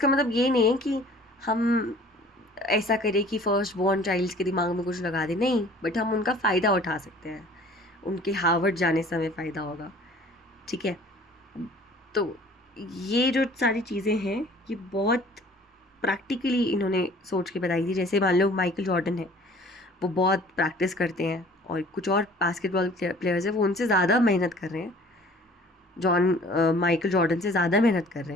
मतलब ये नहीं है कि हम ऐसा करें कि फर्स्ट बॉर्न चाइल्ड्स के दिमाग में कुछ लगा दें, नहीं, बट हम उनका फ़ायदा उठा सकते हैं, उनके हार्वर्ड जाने से हमें फ़ायदा होगा, ठीक है। तो ये जो सारी चीज़ें हैं ये बहुत प्रैक्टिकली इन्होंने सोच के बताई थी। जैसे मान लो माइकल जॉर्डन है, वो बहुत प्रैक्टिस करते हैं, और कुछ और बास्केटबॉल प्लेयर्स हैं वो उनसे ज़्यादा मेहनत कर रहे हैं, माइकल जॉर्डन से ज़्यादा मेहनत कर रहे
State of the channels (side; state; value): both; normal; correlation 0.50